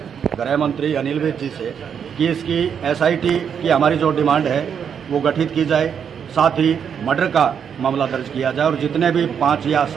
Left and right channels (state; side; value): quieter; left; 7.6 dB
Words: गृह मंत्री अनिल विज जी से कि इसकी SIT की हमारी जो डिमांड है वो गठित की जाए, साथ ही मर्डर का मामला दर्ज किया जाए और जितने भी 5 या